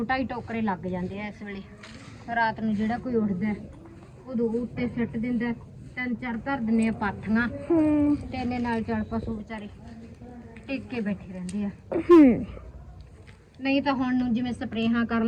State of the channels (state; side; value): identical; both; correlation 1.00